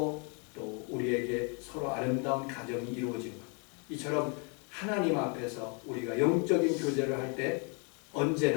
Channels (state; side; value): quieter; right; 36.0 dB